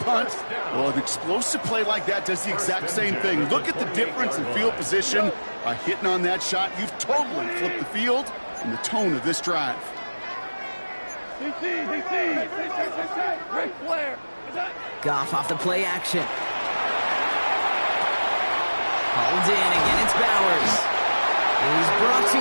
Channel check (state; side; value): inverted; both; correlation -1.00